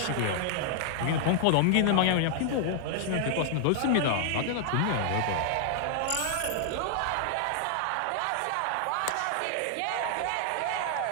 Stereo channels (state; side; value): different; both; correlation 0.00